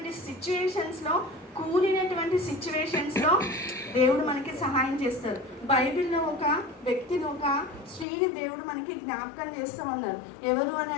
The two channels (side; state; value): right; drops out; at 8.1 s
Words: సిచ్యువేషన్స్లో, కూలినటువంటి సిచ్యువేషన్స్లో దేవుడు మనకి సహాయం చేస్తారు. బైబిల్లో ఒక వ్యక్తిని, ఒక స్త్రీని దేవుడు మనకి జ్ఞాపకం చేస్తూ ఉన్నారు. ఎవరు అని